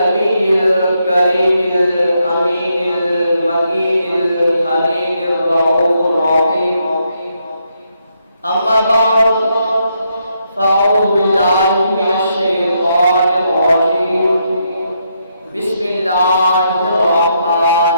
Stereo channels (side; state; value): both; inverted; correlation -0.78